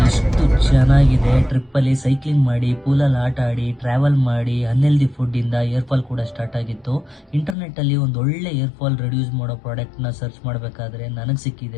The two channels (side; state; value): right; drops out; at 7.6 s